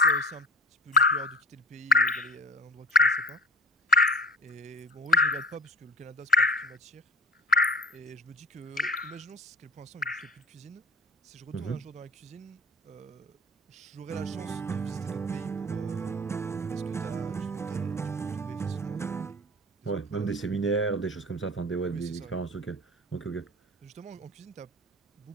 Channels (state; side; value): normal; both; correlation 0.36